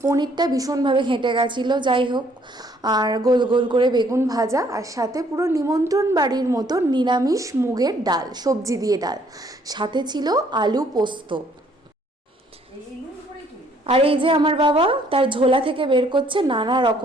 পনিরটা ভীষণভাবে ঘেঁটে গেছিলো, যাই হোক। আর গোল গোল করে বেগুন ভাজা, আর সাথে পুরো নিমন্ত্রণ বাড়ির মতো নিরামিষ মুগের ডাল, সবজি দিয়ে ডাল, সাথে ছিল আলু পোস্ত। আর এই যে আমার বাবা তার ঝোলা থেকে বের করছে নানা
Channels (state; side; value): normal; both; correlation 0.64